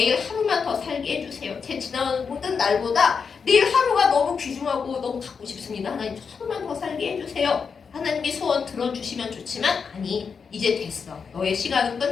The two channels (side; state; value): right; quieter; 5.8 dB